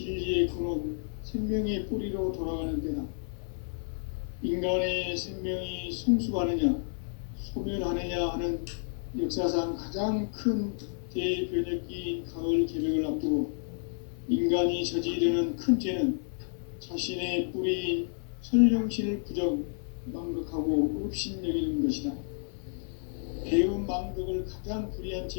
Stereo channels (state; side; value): silent; right; 57 dB below the other